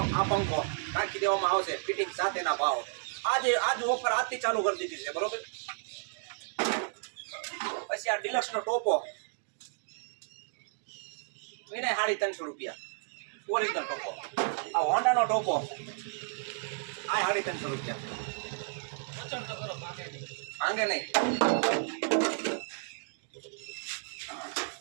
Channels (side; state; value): left; silent; digital silence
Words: આ પંખો નાખી દેવામાં આવશે ફિટિંગ સાથેના ભાવ આજ ઓફર આજથી ચાલુ કરી દીધી છે બરોબર પછી આ ડિલક્સ નો ટોપો એને 350 રૂપિયા ઓરિજિનલ ટોપો આ હોન્ડા નો ટોપો આ 350 રૂપિયા માંગે નહીં